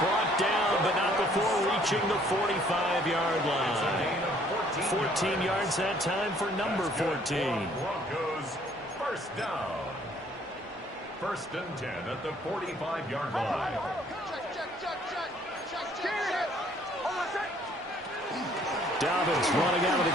down, but not before reaching the 45-yard line. 14 yards that time for number 14. Broncos first down. 1st and 10 at the 45-yard line. Dobbins running out of the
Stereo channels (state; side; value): normal; both; correlation 0.61